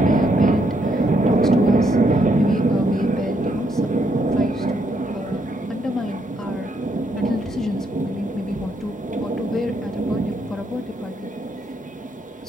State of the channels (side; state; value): both; normal; correlation 0.75